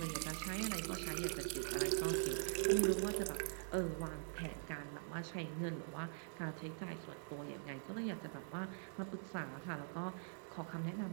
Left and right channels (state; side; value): silent; left; digital silence